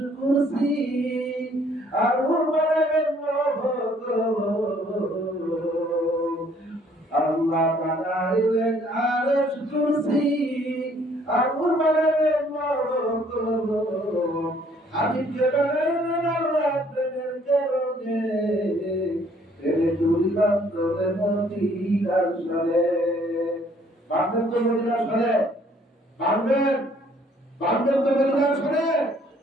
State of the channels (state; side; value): normal; both; correlation 0.62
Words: কুরসি, আর বানাইলেন লৌহ। আল্লাহ বানাইলেন আরশ কুরসি, আর বানাইলেন লৌহ। হাবিবকে বানাইলেন আল্লাহ প্রেমের কারণে, প্রেমের কলি বান্ধরে মদিনার সরে। বান্ধব তো মদিনার সরে, বান্ধবের বান্ধব তো মদিনার সরে।